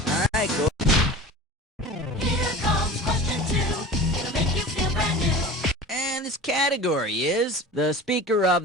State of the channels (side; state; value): both; normal; correlation 0.36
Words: Alright, go. Here comes question 2. It'll make you feel brand new. And this category is, the Speaker of